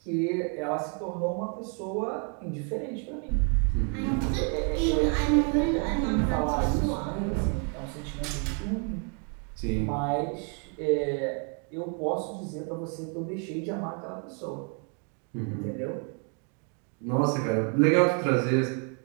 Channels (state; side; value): quieter; left; 40.0 dB